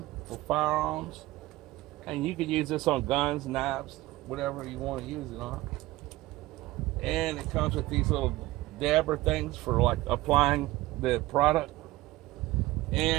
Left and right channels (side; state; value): left; quieter; 18.2 dB